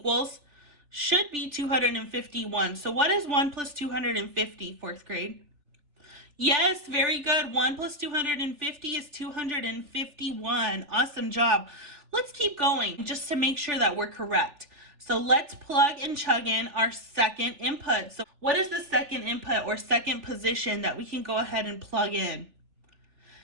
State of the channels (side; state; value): left; late; 3.4 ms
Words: should be 251. So what is 1 plus 250, fourth grade? Yes, very good. 1 plus 250 is 251. Awesome job. Let's keep going just to make sure that we're correct. So let's plug and chug in our second input. So what is the second input or second position that we can go ahead and plug in?